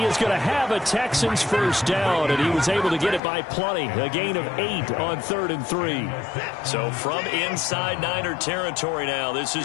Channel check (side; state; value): right; drops out; at 3.2 s